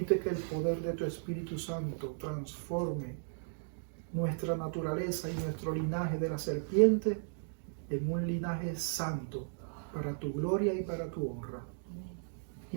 que el poder de tu Espíritu Santo transforme nuestra naturaleza y nuestro linaje de la serpiente en un linaje santo para tu gloria y para tu honra.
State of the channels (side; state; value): left; silent; digital silence